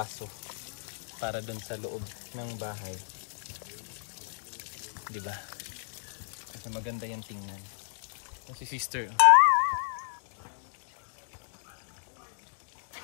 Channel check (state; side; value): silent; right; digital silence